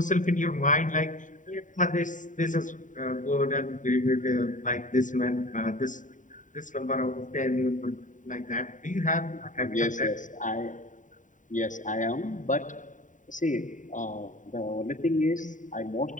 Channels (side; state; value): right; late; 0.37 ms